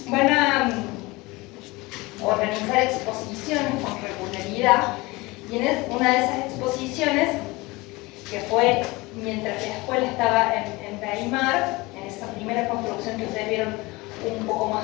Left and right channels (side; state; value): right; quieter; 22.7 dB